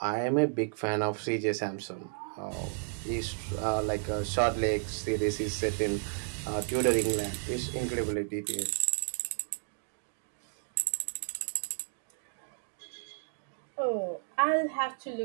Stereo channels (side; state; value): left; silent; 56 dB below the other